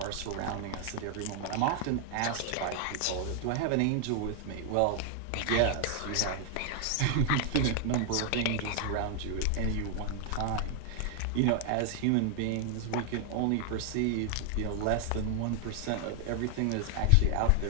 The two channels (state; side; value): different; both; correlation 0.00